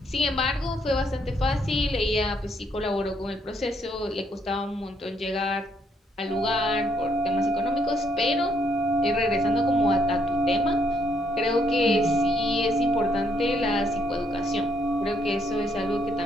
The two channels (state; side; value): normal; both; correlation 0.72